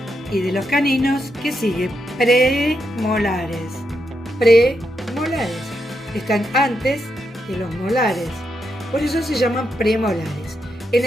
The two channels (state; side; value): normal; both; correlation 0.82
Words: y de los caninos, ¿qué sigue? Premolares. Premolares. Están antes de los molares. Por eso se llaman premolares. En